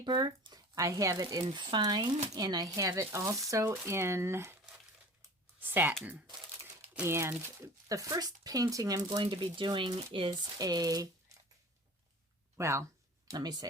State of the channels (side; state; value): both; normal; correlation 0.41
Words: I have it in fine, and I have it also in satin. And the first painting I'm going to be doing is a